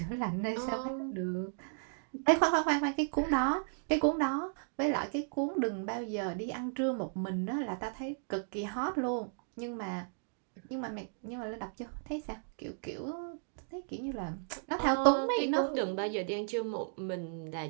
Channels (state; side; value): silent; left; digital silence